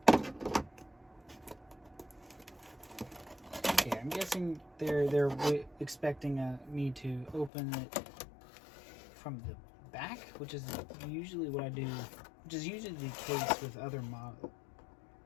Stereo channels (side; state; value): right; drops out; at 7.5 s